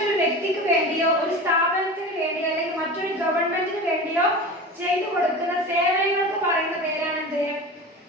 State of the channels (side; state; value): both; normal; correlation 0.32